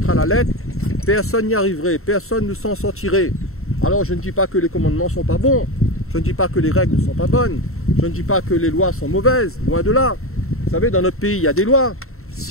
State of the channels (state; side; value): late; right; 0.63 ms